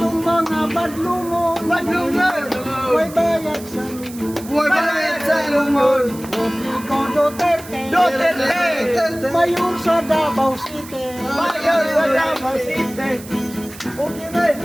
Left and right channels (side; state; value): right; noise; hiss, 17 dB below the sound